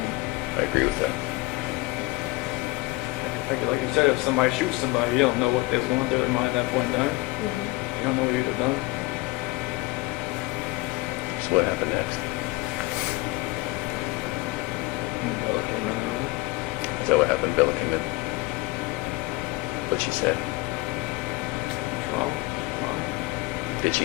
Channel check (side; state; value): right; quieter; 21.9 dB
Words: I agree with that. Like you said, if somebody shoots somebody, you don't know what was going through their mind at that point in time. Mm-hmm. You don't know what you'd have done. So what happened next? Bella came in. Is that what happened? Bella came in. What she said? What's wrong? Wrong. Did